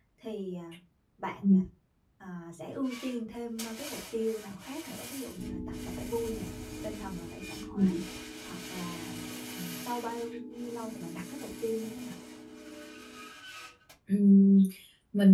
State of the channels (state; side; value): identical; both; correlation 1.00